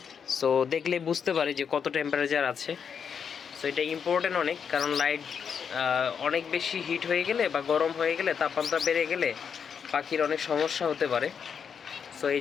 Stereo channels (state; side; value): quieter; right; 6.9 dB